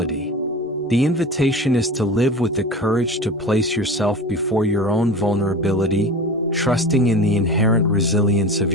The invitation is to live with the courage to place yourself before your own vulnerability, trusting in the inherent resilience of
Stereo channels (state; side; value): normal; both; correlation 0.32